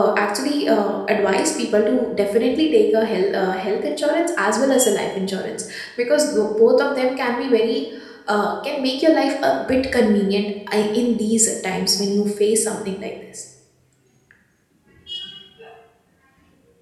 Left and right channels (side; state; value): both; identical; correlation 1.00